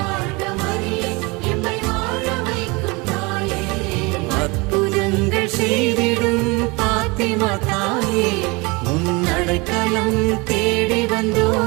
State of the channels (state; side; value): quieter; left; 26.5 dB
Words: வாழ்க மரியே, எம்மை வாழ வைக்கும் தாயே. அற்புதங்கள் செய்திடும் பாத்திமா தாயே, உன் அடைக்கலம் தேடி